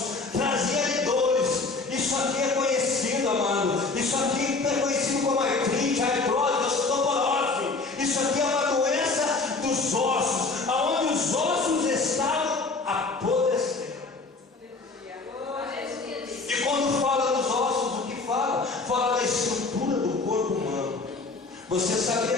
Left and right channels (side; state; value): right; quieter; 3.8 dB